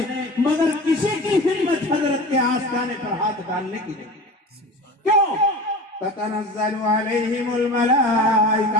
مگر کسی کی ہمت حضرت کے آستانے پر ہاتھ ڈالنے کی نہیں۔ کیوں؟ تتنزل علیہم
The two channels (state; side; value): normal; both; correlation 0.34